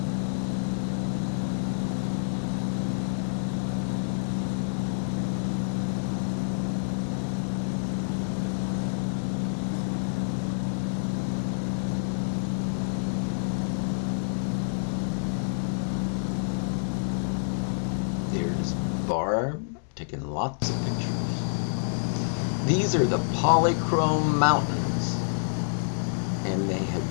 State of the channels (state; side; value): silent; right; 58 dB below the other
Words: There's Barb taking lots of pictures. These are the Polychrome Mountains, and they had